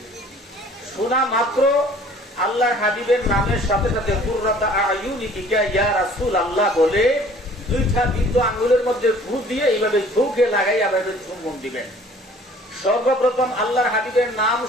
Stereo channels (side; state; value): both; normal; correlation 0.52